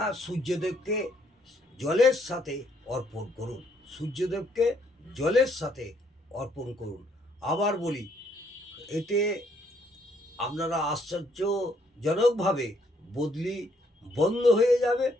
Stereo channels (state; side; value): normal; both; correlation 0.69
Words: সূর্যদেবকে জলের সাথে অর্পণ করুন। সূর্যদেবকে জলের সাথে অর্পণ করুন। আবার বলি, এতে আপনারা আশ্চর্যজনকভাবে বদলি বন্ধ হয়ে যাবে,